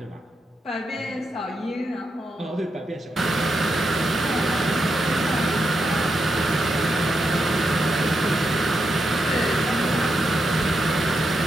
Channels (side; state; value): both; normal; correlation 0.84